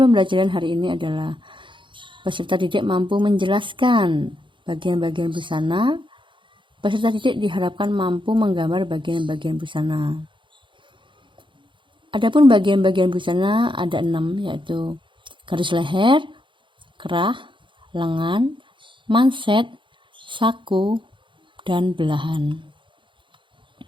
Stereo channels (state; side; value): late; left; 0.24 ms